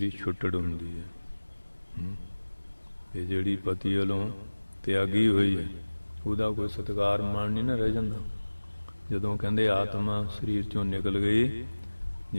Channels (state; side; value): inverted; both; correlation -1.00